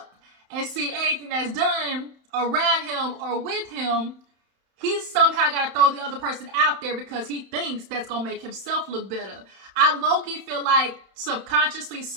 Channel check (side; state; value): left; late; 31 ms